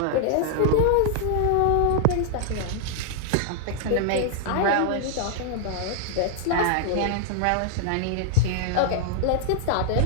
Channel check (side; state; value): both; different; correlation 0.00